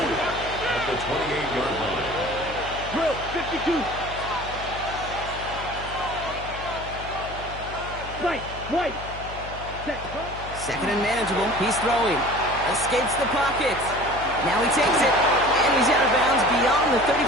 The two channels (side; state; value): left; noise; hum, 12 dB below the sound